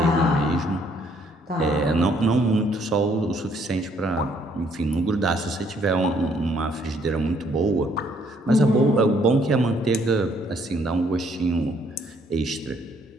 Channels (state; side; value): normal; both; correlation 0.67